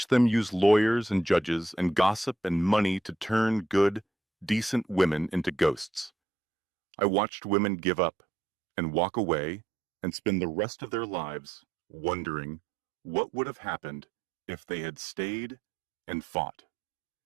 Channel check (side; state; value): left; drops out; at 6.1 s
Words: them use lawyers and judges and gossip and money to turn good, decent women into ghosts. I watched women give up and walk away and spend the rest of their lives wondering what would have happened if they had stayed and fought.